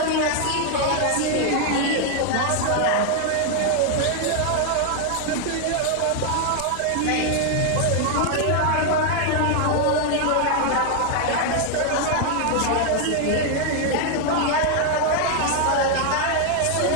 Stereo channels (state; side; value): different; both; correlation 0.00